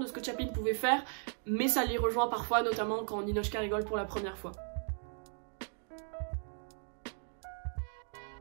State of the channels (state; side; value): silent; left; 54 dB below the other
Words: ce que Chaplin pouvait faire, mais ça les rejoint parfois, notamment quand Ninotchka rigole pour la première fois.